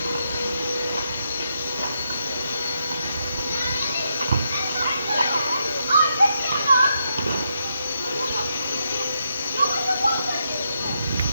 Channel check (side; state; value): both; inverted; correlation -0.81